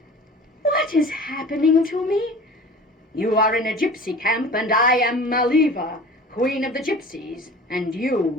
What is happening to me? You are in a gypsy camp, and I am Maliva, queen of the gypsies. And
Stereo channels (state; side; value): normal; both; correlation 0.41